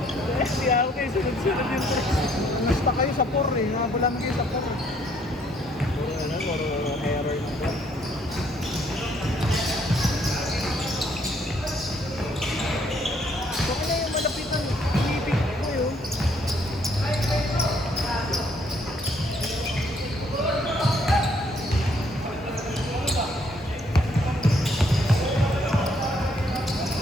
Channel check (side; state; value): both; normal; correlation 0.67